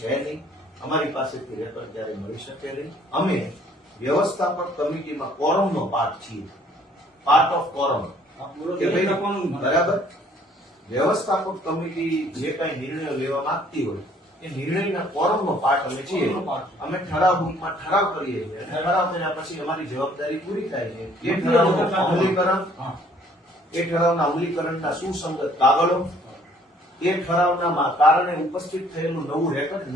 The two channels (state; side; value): normal; both; correlation 0.60